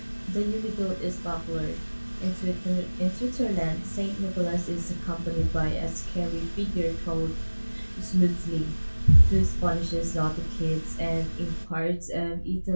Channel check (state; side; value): inverted; both; correlation -1.00